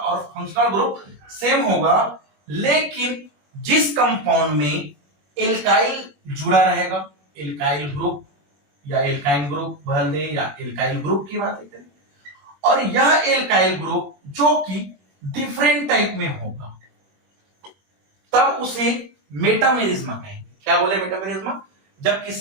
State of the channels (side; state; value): left; late; 21 ms